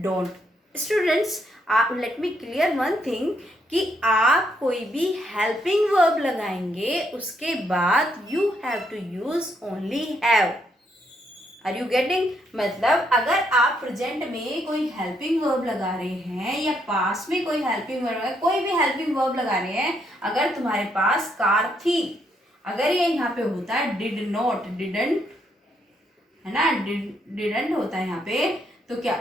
Students, let me clear one thing कि आप कोई भी हेल्पिंग वर्ब लगाएंगे उसके बाद you have to use only have. Are you getting? मतलब अगर आप प्रेजेंट में कोई हेल्पिंग वर्ब लगा रहे हैं या पास में कोई हेल्पिंग वर्ब, कोई भी हेल्पिंग वर्ब लगा रहे हैं, अगर तुम्हारे पास कार थी, अगर ये यहाँ पे होता है डिड नॉट, डिडंट, है ना, डिडंट होता है यहाँ पे, तो क्या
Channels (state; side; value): normal; both; correlation 0.75